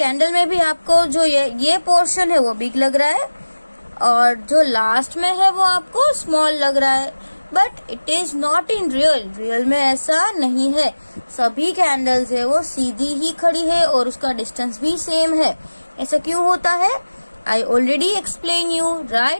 में भी आपको जो ये पोर्शन है वो बिग लग रहा है, और जो लास्ट में है वो आपको स्मॉल लग रहा है, but it is not in real में ऐसा नहीं है। सभी कैंडल्स है वो सीधी ही खड़ी है और उसका डिस्टेंस भी सेम है। ऐसा क्यों होता है? I already explain you,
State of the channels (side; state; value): both; inverted; correlation -1.00